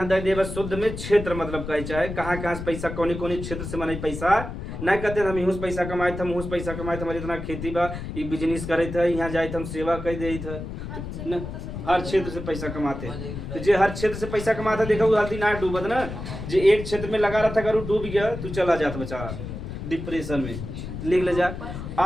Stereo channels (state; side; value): noise; left; rumble, 8 dB below the sound